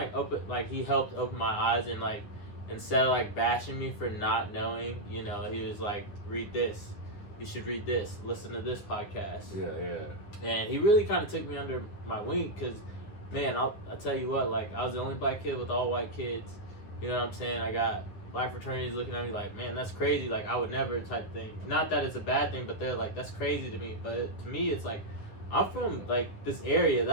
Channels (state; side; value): late; right; 9.8 ms